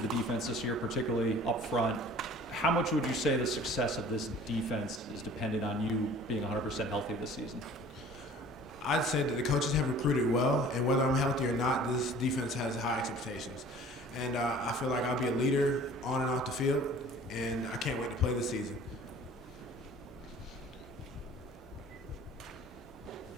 defense this year, particularly up front. How much would you say the success of this defense is dependent on you being 100% healthy this season? I'd say that the coaches have recruited well, and whether I'm healthy or not, this defense has high expectations. And I feel like I'll be a leader on and off the field, and I can't wait to play this season.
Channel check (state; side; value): normal; both; correlation 0.48